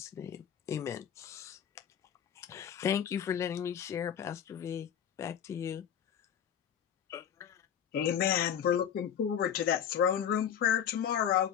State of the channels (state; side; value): quieter; right; 9.0 dB